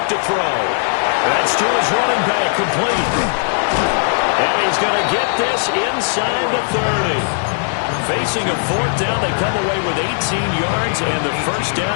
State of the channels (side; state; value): right; silent; digital silence